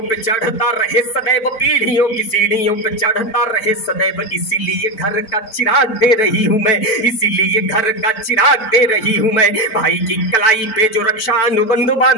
पे चढ़ता रहे सदैव, पीढ़ियों की सीढ़ियों पे चढ़ता रहे सदैव, इसीलिए घर का चिराग दे रही हूं मैं, इसीलिए घर का चिराग दे रही हूं मैं। भाई की कलाई पे जो रक्षा अनुबंध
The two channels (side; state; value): right; late; 4.0 ms